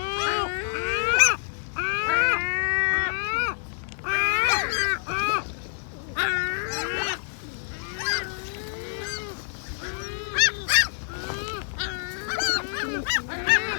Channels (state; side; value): silent; right; digital silence